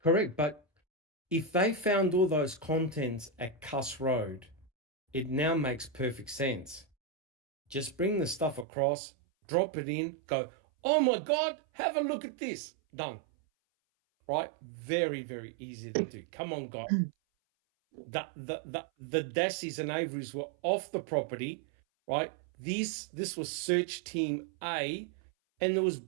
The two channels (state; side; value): drops out; left; at 8.7 s